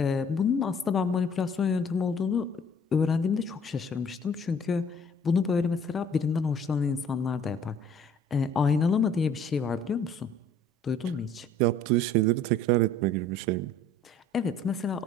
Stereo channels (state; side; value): normal; both; correlation 0.55